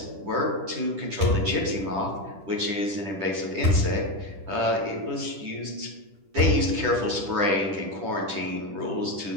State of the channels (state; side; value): late; left; 10 ms